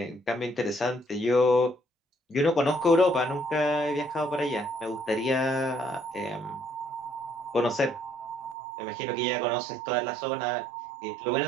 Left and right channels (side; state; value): left; drops out; at 8.6 s